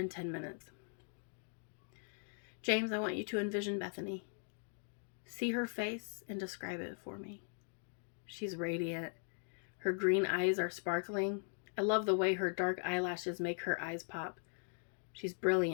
10 minutes. James, I want you to envision Bethany. See her face and describe it for me. She's radiant. Her green eyes are sparkling. I love the way her dark eyelashes make her eyes pop. She's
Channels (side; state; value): right; silent; 51 dB below the other